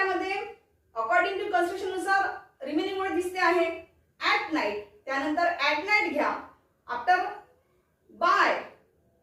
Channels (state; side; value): identical; both; correlation 1.00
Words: अकॉर्डिंग टू कन्स्ट्रक्शन नुसार रिमेनिंग वर्ड दिसते आहे, ऍट नाईट. त्यानंतर ऍट नाईट घ्या, आफ्टर बाय,